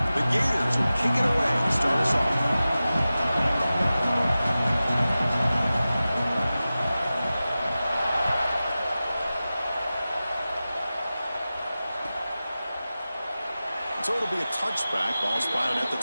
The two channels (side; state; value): both; inverted; correlation -0.95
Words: Gators will kick it away to start us off. So it'll be a touchback. Ball spotted at the